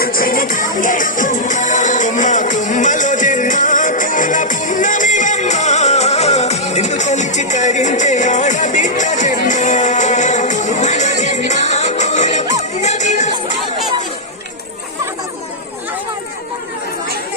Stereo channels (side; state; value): both; normal; correlation -0.09